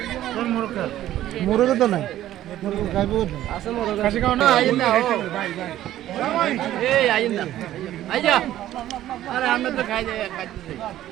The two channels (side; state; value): left; quieter; 13.2 dB